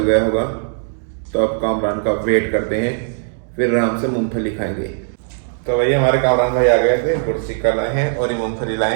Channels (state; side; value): silent; left; digital silence